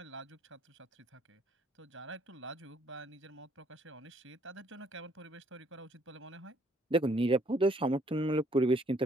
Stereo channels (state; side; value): normal; both; correlation 0.66